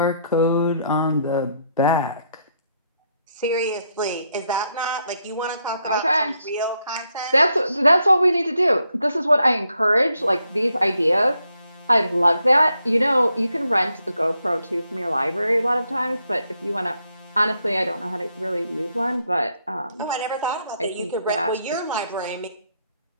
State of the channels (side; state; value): both; inverted; correlation -0.77